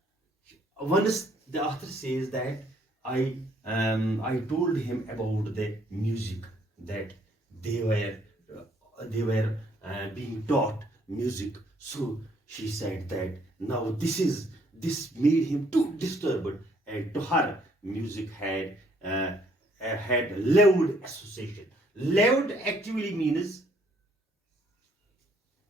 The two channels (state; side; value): normal; both; correlation 0.65